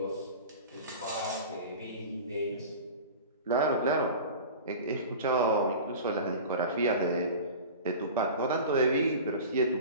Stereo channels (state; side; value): inverted; both; correlation -0.35